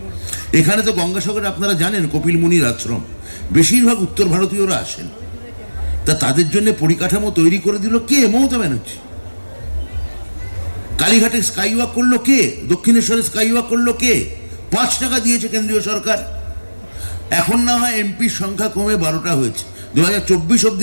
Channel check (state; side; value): inverted; both; correlation -1.00